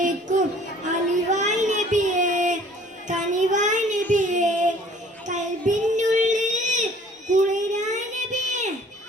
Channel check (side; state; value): both; normal; correlation 0.53